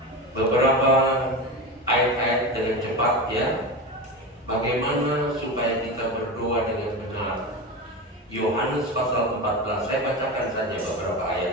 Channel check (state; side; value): normal; both; correlation 0.23